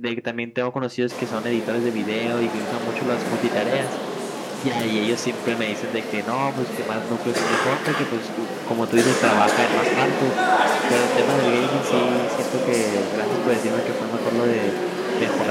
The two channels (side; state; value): both; identical; correlation 1.00